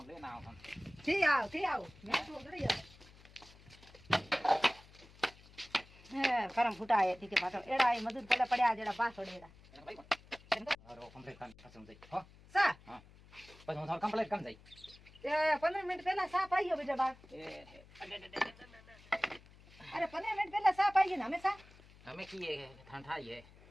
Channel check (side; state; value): left; noise; hum, 23 dB below the sound